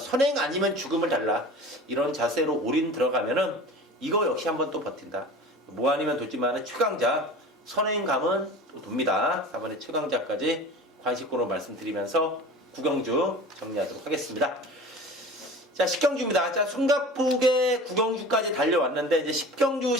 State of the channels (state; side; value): normal; both; correlation 0.38